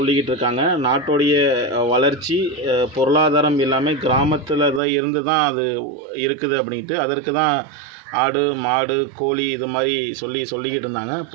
இருக்காங்க. நாட்டோடைய வளர்ச்சி பொருளாதாரம் எல்லாமே கிராமத்தில் தான் இருந்து தான் அது இருக்குது அப்படின்ட்டு. அதற்கு தான் ஆடு மாடு கோழி இது மாதிரி சொல்லிக்கிட்டு இருந்தாங்க.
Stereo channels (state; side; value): drops out; left; at 4.8 s